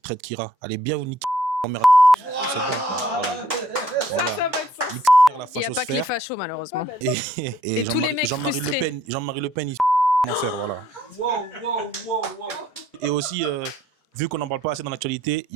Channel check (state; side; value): normal; both; correlation 0.64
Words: traitent Kira, allez bien vous niquer grand-mère. C'est bon, voilà. Voilà. Ça va être ça. La Il n'y a pas que les fachos, malheureusement. Et tous les mecs Jean-Marie Le frustrés. Pen, Jean-Marie Le Pen, il en faire, voilà. Wow. Et aussi, vu qu'on n'en parle pas assez dans l'actualité, il